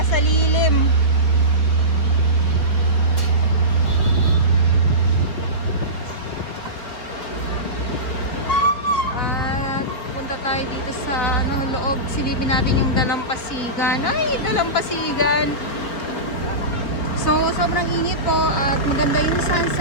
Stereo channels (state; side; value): late; right; 3.7 ms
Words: sa lilim. At punta tayo dito sa loob, silipin natin yung Dalampasigan. Ay, Dalampasigan! So, sobrang init po at maganda yung